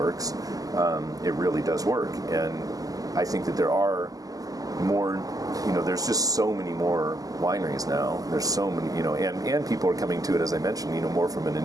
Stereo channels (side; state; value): left; late; 0.17 ms